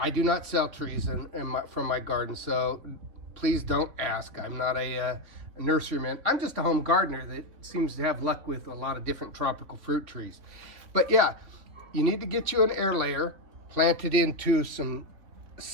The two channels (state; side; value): late; left; 3.4 ms